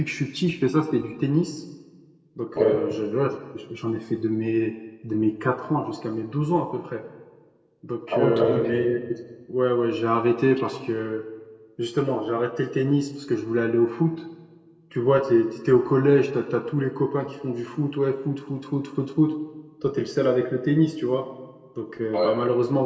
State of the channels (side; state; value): both; identical; correlation 1.00